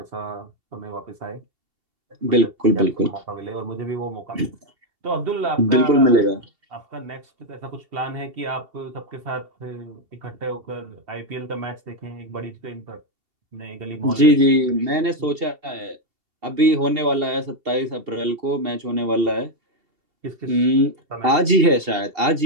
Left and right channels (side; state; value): left; late; 2.7 ms